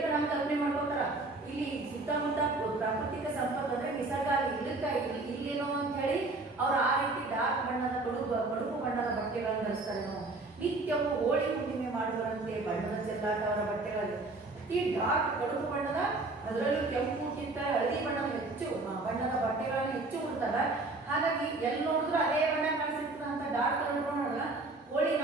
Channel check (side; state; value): left; quieter; 3.2 dB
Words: ನಾವು ಕಲ್ಪನೆ ಮಾಡ್ಕೋತಾರ ಇಲ್ಲಿ ಸುತ್ತಮುತ್ತ ಪ್ರಾಕೃತಿಕ ಸಂಪತ್ತು ಅಂದ್ರೆ ನಿಸರ್ಗ ಇಲ್ಲೇನೋ ಅಂತ ಹೇಳಿ ಅವ್ರು ಆ ರೀತಿ ಡಾರ್ಕ್ ಬಣ್ಣದ ಕಡುಪು ಬಣ್ಣದ ಬಟ್ಟೆಗಳನ್ನು ಧರಿಸ್ತಾರೇನೋ. ನಿತ್ಯವೂ ಹೋಳಿ ಹುಣ್ಣಿಮೆ ಮಾಡುವರಂತೆ ಬಣ್ಣದ ಚೆಲ್ಲಾಟ ಅವರ ಬಟ್ಟೆಗಳಲ್ಲಿ ಈ ಡಾರ್ಕ್ ಕಡುಪು ಬಣ್ಣದ ಅದರಲ್ಲೂ ಕೆಂಪುಕ್ಕಿಂತ ಹಳದಿ ಬಣ್ಣದ ಬಟ್ಟೆಗಳನ್ನು ಹೆಚ್ಚು ಉಡ್ತಾರ. ಹಾಗಾಗಿ ಎಲ್ಲಿ ನೋಡಿದ್ರು ಅದೇ ಬಣ್ಣ ಕಾಣಿಸಿರ್ತದ ಅಂತ ಡಾರ್ಕ್ ಕಲರ್ ನೋಡಲ್ಲ. ಹೋಳಿ